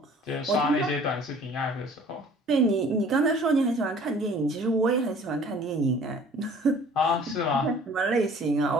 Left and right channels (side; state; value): both; normal; correlation 0.51